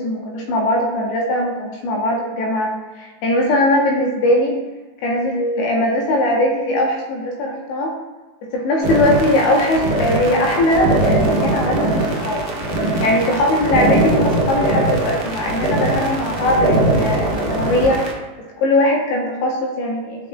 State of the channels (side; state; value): right; late; 19 ms